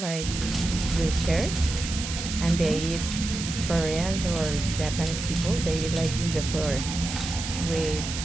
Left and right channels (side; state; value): right; noise; hiss, 6 dB below the sound